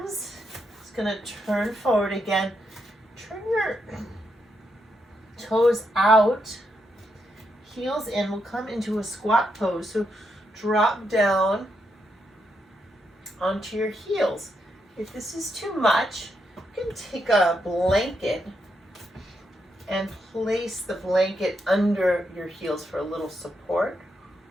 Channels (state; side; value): normal; both; correlation 0.81